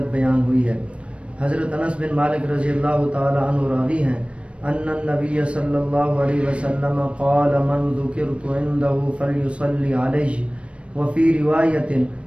بیان ہوئی ہے۔ حضرت انس بن مالک رضی اللہ تعالی عنہ راوی ہیں ان النبی صلی اللہ علیہ وسلم قال من ذکرت عنده فلیصلی علیہ وفی روایت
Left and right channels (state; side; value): late; left; 0.060 ms